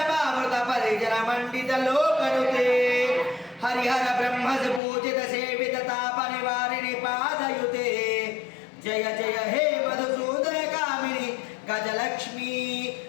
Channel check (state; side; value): drops out; right; at 4.8 s